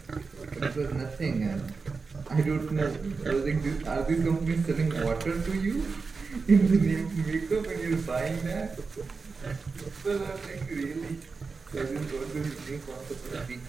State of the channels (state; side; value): quieter; left; 4.6 dB